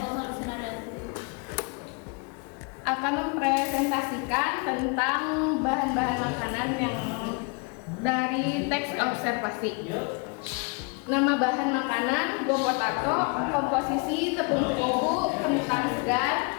Lucinariati. akan mempresentasikan tentang bahan-bahan makanan yang dari teks observasi. Nama bahan makanan go potato, komposisi tepung terigu, kentang segar,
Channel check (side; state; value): right; quieter; 33.7 dB